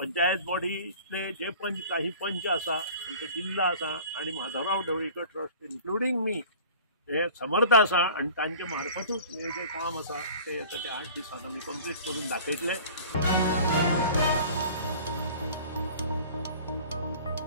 बॉडीतले जे काही पंच आसा आमचे जिल्हा आसा आनी माधवराव ढवळीकर ट्रस्ट इन्क्लुडींग मी हे समर्थ आसा आनी तांचे मार्फतूच हे जे काम आसा ते येता ते 8 दिसांत आमी कंप्लीट करून दाखयतले.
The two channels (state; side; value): inverted; both; correlation -0.44